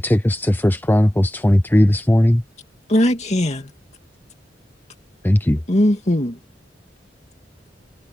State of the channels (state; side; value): normal; both; correlation 0.93